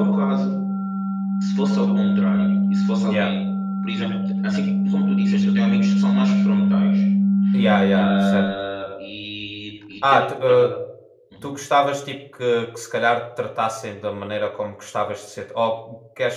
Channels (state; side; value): identical; both; correlation 1.00